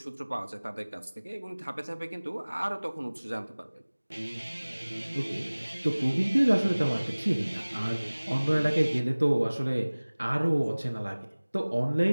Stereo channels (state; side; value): inverted; both; correlation -1.00